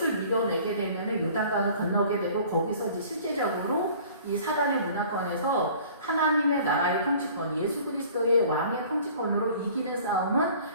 밀어내게 되면은 요단강을 건너게 되고 거기서 이제 실제적으로 이 사단의 문화권에서 하나님의 나라의 통치권, 예수 그리스도의 왕의 통치권으로 이기는 싸움은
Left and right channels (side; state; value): both; inverted; correlation -0.49